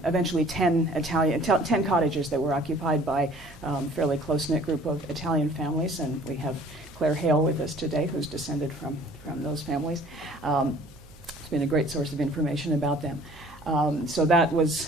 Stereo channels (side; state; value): right; noise; hum, 23 dB below the sound